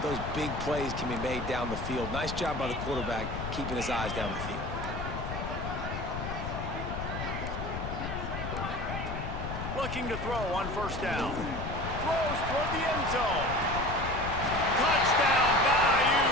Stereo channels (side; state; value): left; noise; rumble, 5 dB below the sound